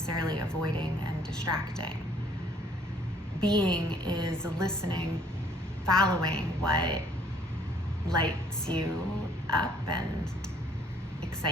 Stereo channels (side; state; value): both; normal; correlation 0.61